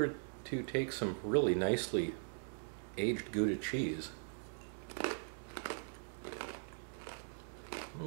to take some really nicely aged Gouda cheese.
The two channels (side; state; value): left; silent; digital silence